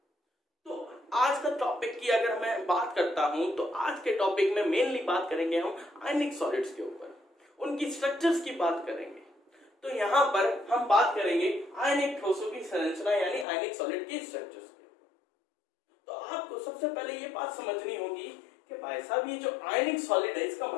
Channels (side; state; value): right; drops out; at 13.5 s